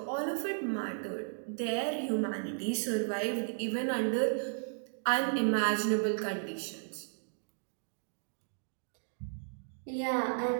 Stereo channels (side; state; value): left; silent; digital silence